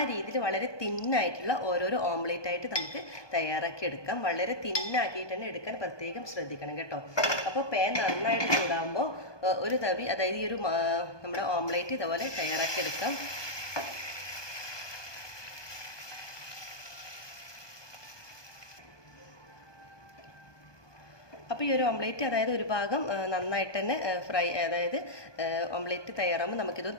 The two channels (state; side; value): late; right; 1.2 ms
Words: രീതിയിൽ വളരെ തിന്നായിട്ടുള്ള ഓരോരോ ഓംലേറ്റ് ആയിട്ട് നമുക്ക് തയ്യാറാക്കി എടുക്കാം. വളരെ തിന്നാക്കിയിട്ട് തന്നെ എടുക്കാൻ പ്രത്യേകം ശ്രദ്ധിക്കണം കേട്ടോ. അപ്പോൾ പാൻ നന്നായിട്ട് ചൂടാകുമ്പോൾ ഒരു തവി, അതായത് ഈ ഒരു നമ്മുടെ ഓംലേറ്റ് ഇതുപോലെ തയ്യാറാക്കി എടുക്കാം. അപ്പോൾ ഈ ഒരു ഓംലേറ്റ്, അതായത് ഒരു ഭാഗം നന്നായിട്ട് തന്നെ അതായത് ഓംലേറ്റ് തയ്യാറാകുമ്പോൾ